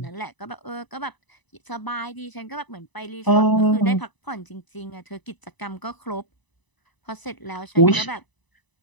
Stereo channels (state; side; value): late; right; 1.0 ms